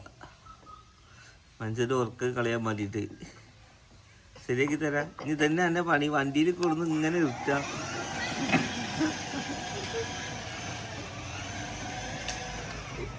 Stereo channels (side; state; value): both; identical; correlation 1.00